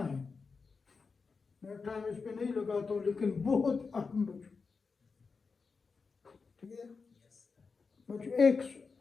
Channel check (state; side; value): quieter; right; 4.8 dB